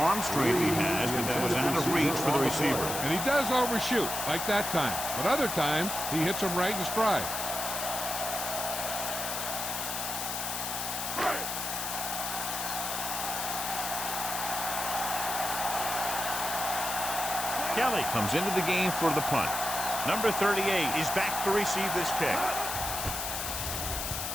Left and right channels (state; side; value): noise; left; hiss, 3 dB below the sound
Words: strength he has, but that was out of reach for the receiver. And he does overshoot, like that time. But other times, he hits him right in stride. Kelly comes into the game for the punt. Number 38 is back to receive this kick.